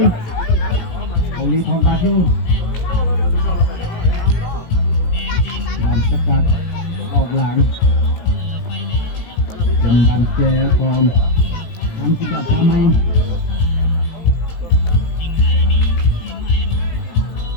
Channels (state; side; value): late; right; 18 ms